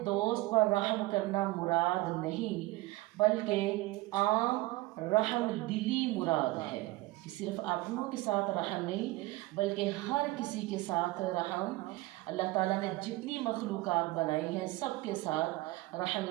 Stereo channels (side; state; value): left; quieter; 19.7 dB